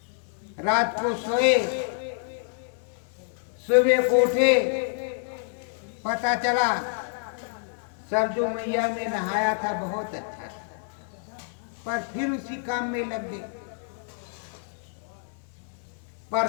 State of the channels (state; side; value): silent; right; 60 dB below the other